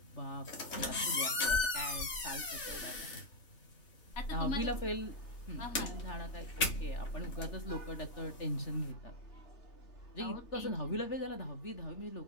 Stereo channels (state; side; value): late; right; 3.3 ms